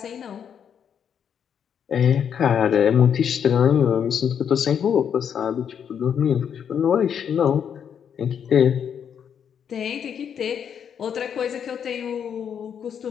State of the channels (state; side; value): quieter; right; 8.0 dB